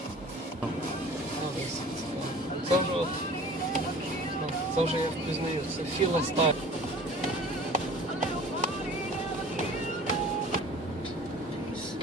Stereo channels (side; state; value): both; normal; correlation 0.45